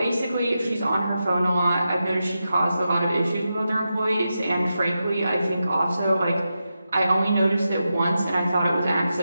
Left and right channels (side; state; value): both; inverted; correlation -0.89